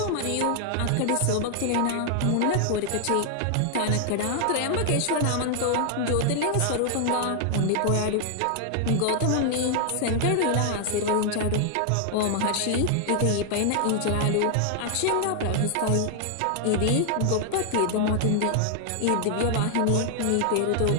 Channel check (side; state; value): both; different; correlation 0.00